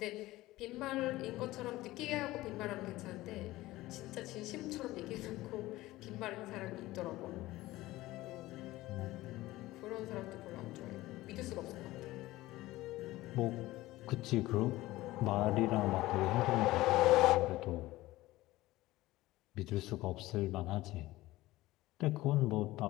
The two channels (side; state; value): right; quieter; 17.7 dB